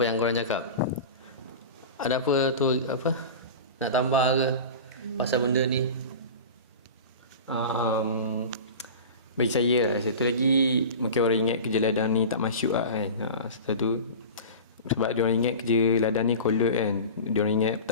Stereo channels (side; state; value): both; inverted; correlation -0.32